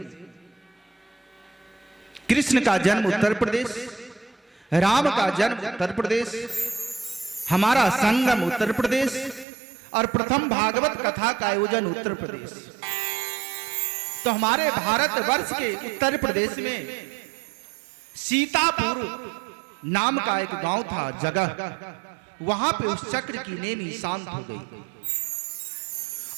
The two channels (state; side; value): drops out; left; at 9.5 s